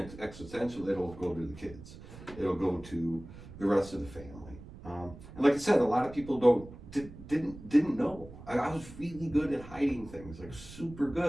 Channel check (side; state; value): right; noise; rumble, 16 dB below the sound